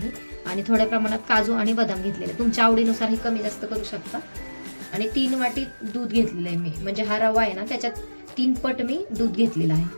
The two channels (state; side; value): inverted; both; correlation -1.00